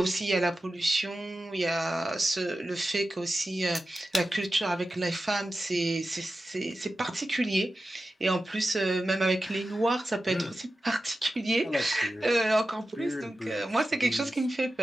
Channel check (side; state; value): both; normal; correlation 0.93